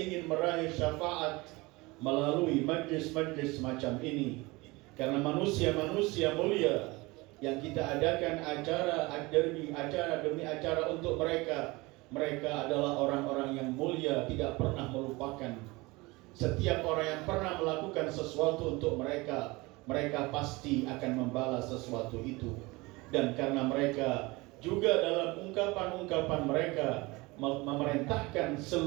meraih syafaat melalui majlis-majlis semacam ini. Karena manusia-manusia mulia yang kita adakan acara demi acara untuk mereka, mereka adalah orang-orang yang mulia, tidak pernah melupakan. Setiap orang yang pernah melakukan sesuatu untuk mereka, mereka pasti akan membalas sesuatu itu. Dan karena mereka juga dalam ungkapan-ungkapan mereka memerintahkan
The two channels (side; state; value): left; quieter; 23.2 dB